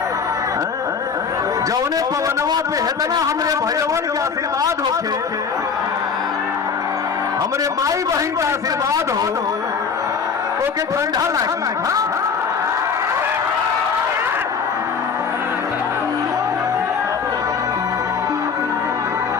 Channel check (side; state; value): right; quieter; 5.9 dB